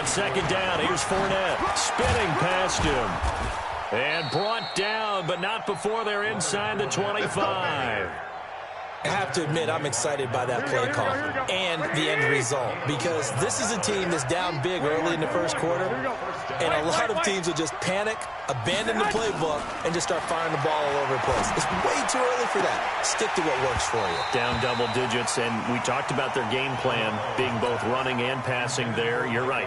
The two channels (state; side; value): identical; both; correlation 1.00